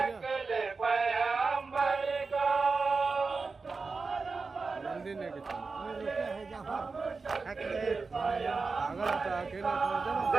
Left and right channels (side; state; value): left; quieter; 4.3 dB